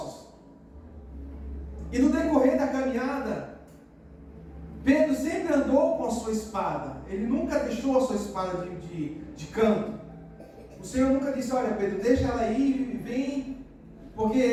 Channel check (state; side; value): identical; both; correlation 1.00